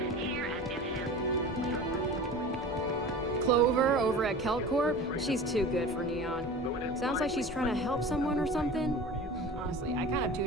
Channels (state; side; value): normal; both; correlation 0.36